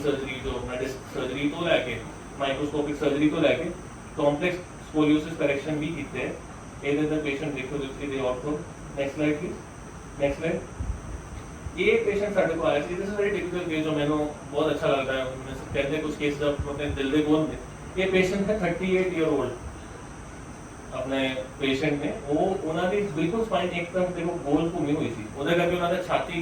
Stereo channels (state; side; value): identical; both; correlation 1.00